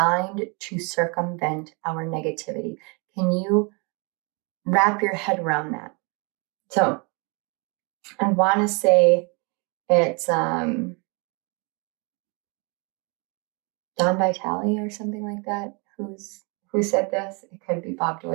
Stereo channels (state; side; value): quieter; left; 32.2 dB